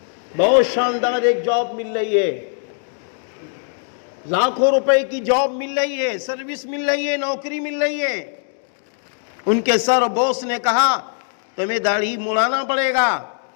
بہت شاندار ایک جاب مل رہی ہے، لاکھوں روپے کی جاب مل رہی ہے، سروس مل رہی ہے، نوکری مل رہی ہے۔ ان کے سر بوس نے کہا تمہیں داڑھی مڑانا پڑے گا۔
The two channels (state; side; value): silent; right; digital silence